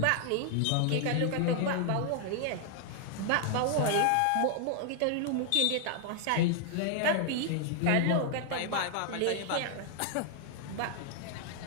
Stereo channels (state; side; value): different; both; correlation 0.00